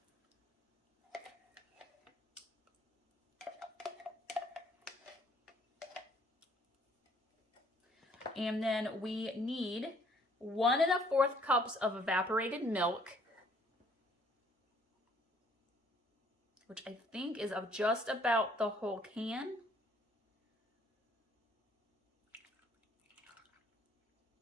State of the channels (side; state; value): both; normal; correlation 0.62